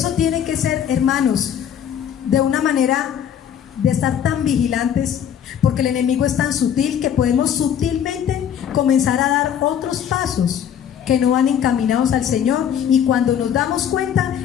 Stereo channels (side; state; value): right; quieter; 9.1 dB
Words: tiene que ser, hermanos, de una manera de estar tan vigilantes, porque el enemigo es tan sutil que podemos sutilmente comenzar a dar otros pasos que no van encaminados al Señor, y cuando nos damos